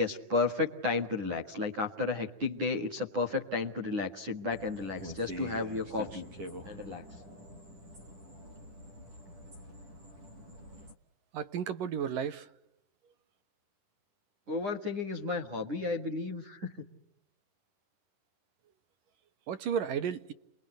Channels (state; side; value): late; left; 9.8 ms